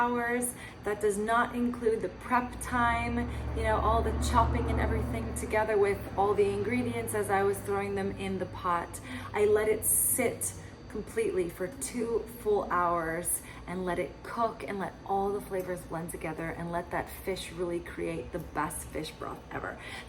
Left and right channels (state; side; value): identical; both; correlation 1.00